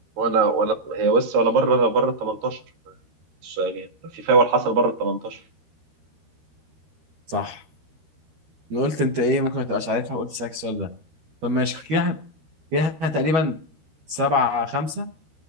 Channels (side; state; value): left; late; 13 ms